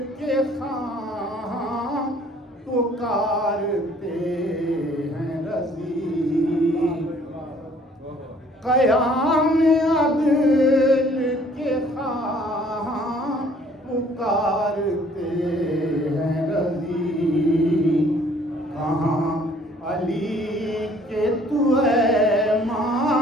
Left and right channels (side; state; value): both; normal; correlation 0.58